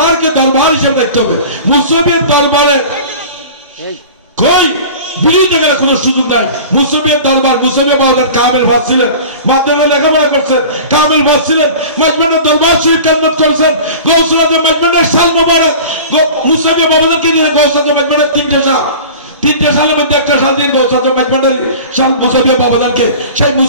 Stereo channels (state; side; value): inverted; both; correlation -0.38